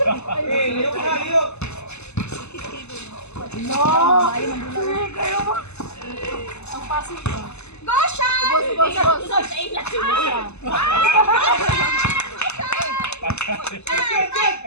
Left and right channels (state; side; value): late; right; 0.80 ms